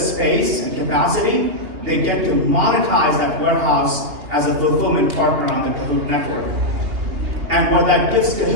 space and capacity, they get to monetize that warehouse as a fulfillment partner on the Kahoot network. And what that gives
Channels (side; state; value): left; late; 3.0 ms